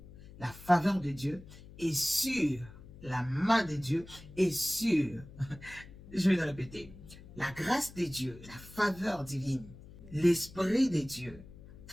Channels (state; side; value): noise; left; hum, 18 dB below the sound